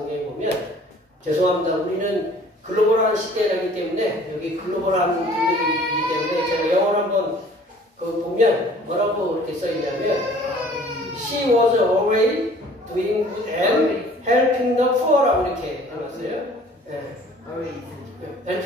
보면 죄송합니다. 우리는 글로벌한 시대이기 때문에 여기 글로벌한 분들이기 때문에 제가 영어로 한번 보면 뭐라고 이렇게 써있냐면 She was always doing good and helping the poor라고 이렇게 해놨어요. 네.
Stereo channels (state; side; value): normal; both; correlation 0.52